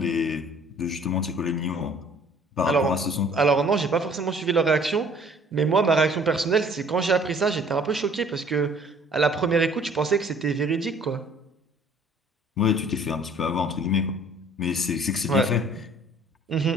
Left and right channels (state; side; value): normal; both; correlation 0.55